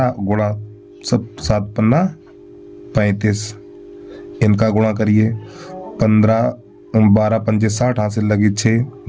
गुणा सब 7 पन्ना 35, इनका गुणा करिए। 15 12 पंजे 60, हाथ से लगी 6,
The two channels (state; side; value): identical; both; correlation 1.00